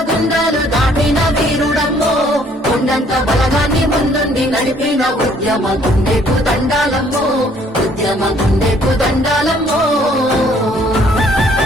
గుండాలు దాటిన వీరుడమ్మో కొండంత బలగాన్ని ముందుండి నడిపిన ఉద్యమ గుండెకు దండాలమ్మో ఉద్యమ గుండెకు దండాలమ్మో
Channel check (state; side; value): normal; both; correlation 0.62